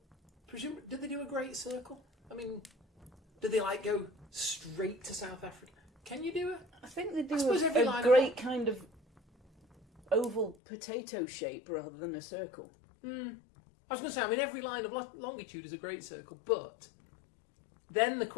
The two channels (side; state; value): right; drops out; at 10.6 s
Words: did they do a great circle? I mean, did they go straight to South Africa? Can you do it? I think they I do suppose every a line great kind of oval potato shape rather than a circle. I was going to say, I mean, every line of longitude is a great circle, but then the